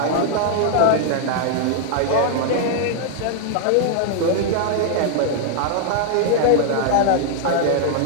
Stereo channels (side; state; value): both; different; correlation -0.01